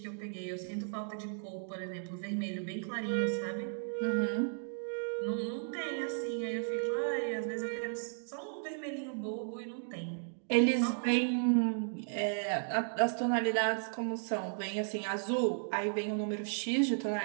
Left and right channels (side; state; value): left; silent; digital silence